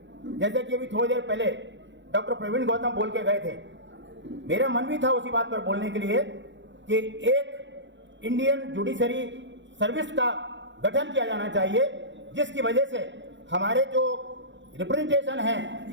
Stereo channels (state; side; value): late; left; 0.53 ms